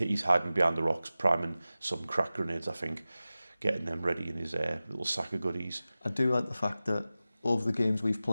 hiding behind the rocks, priming some crack grenades, I think, getting them ready in his little sack of goodies. I do like the fact that over the games we've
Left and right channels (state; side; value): inverted; both; correlation -0.96